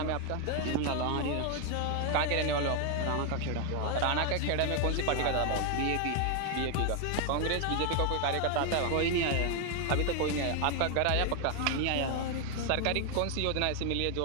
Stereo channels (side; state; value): both; different; correlation 0.01